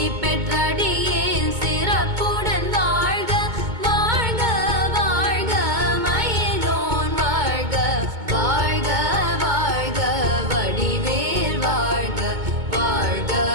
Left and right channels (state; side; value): late; left; 2.2 ms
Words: பெற்றடியேன் சிறப்புடன் வாழ்க வாழ்க வாழ்க மயிலோன் வாழ்க வாழ்க வாழ்க வடிவேல் வாழ்க வாழ்க